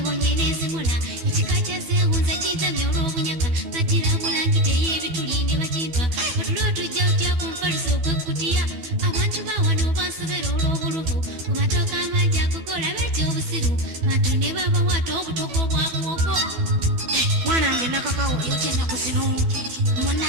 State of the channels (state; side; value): late; left; 12 ms